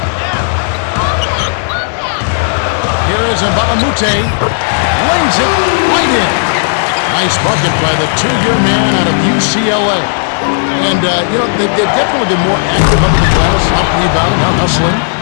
Here is Mbamute. Lays it right in. Nice bucket by the two-year man out of UCLA. And, they've definitely been more active under the glass, out rebounding, out hustling.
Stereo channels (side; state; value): right; silent; digital silence